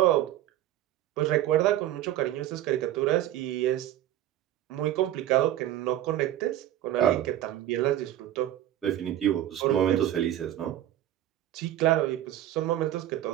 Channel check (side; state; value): left; quieter; 12.8 dB